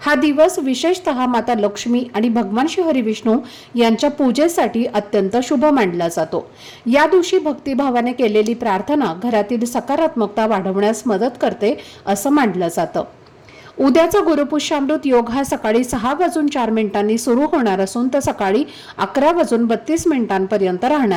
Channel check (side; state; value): both; identical; correlation 1.00